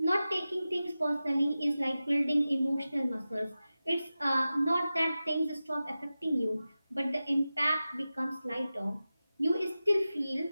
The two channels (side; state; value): both; inverted; correlation -0.94